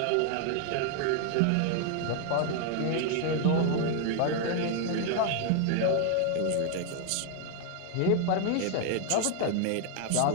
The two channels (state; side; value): different; both; correlation 0.00